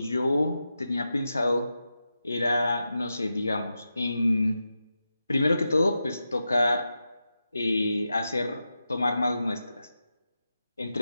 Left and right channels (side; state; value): both; inverted; correlation -0.90